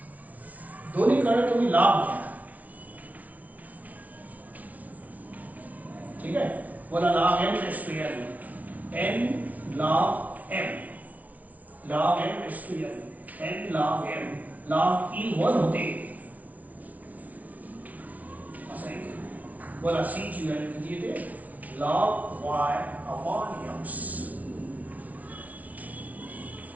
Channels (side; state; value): left; late; 0.072 ms